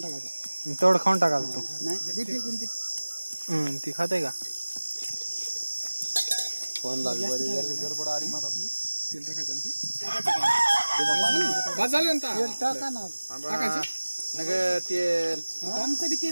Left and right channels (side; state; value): both; inverted; correlation -1.00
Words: तेवढं खाऊन टाकायला तो नाही कोणती ती खाते का फोन लागली गडबड आली मला तेल टाकायचं टाका ना तेल आमचं बी